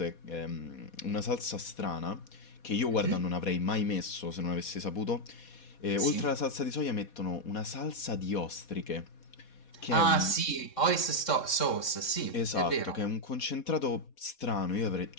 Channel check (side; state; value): right; late; 3.6 ms